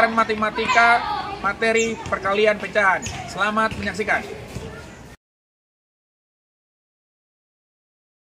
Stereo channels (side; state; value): both; identical; correlation 1.00